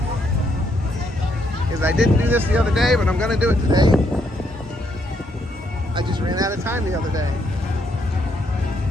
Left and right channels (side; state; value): both; normal; correlation 0.74